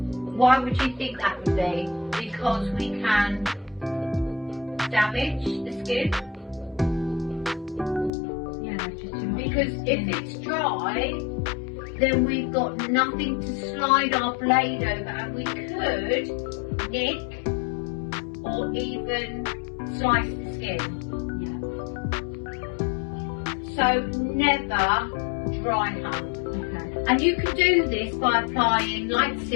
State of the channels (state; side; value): drops out; right; at 8.1 s